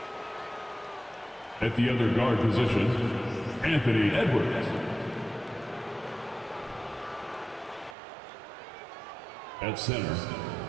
At the other guard position, Anthony Edwards. At center,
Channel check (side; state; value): left; drops out; at 8.0 s